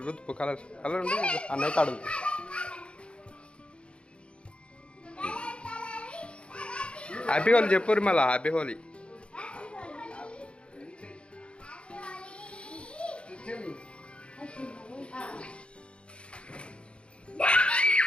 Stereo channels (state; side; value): late; right; 0.057 ms